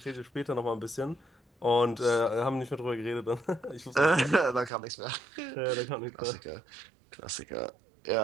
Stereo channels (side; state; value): left; drops out; at 4.7 s